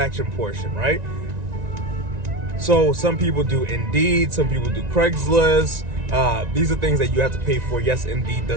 portion, right? So some people do Indeed, some people do Craigslist. These are things that you have to pay for. Yes, Indeed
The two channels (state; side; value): late; left; 1.9 ms